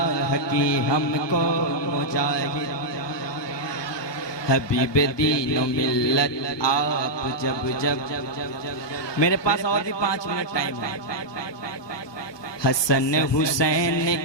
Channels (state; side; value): late; right; 1.2 ms